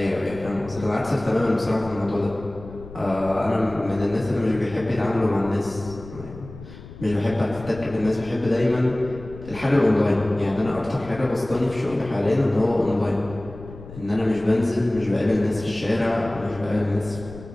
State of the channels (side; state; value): left; noise; rumble, 15 dB below the sound